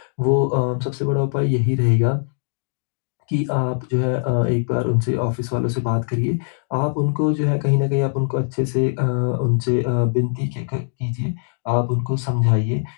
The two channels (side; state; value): right; silent; digital silence